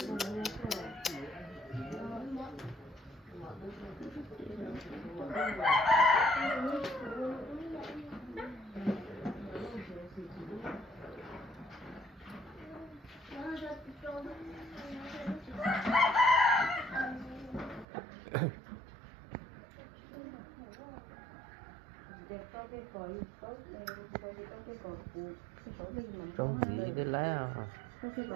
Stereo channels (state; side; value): drops out; left; at 17.9 s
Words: Trong gì để lấy à?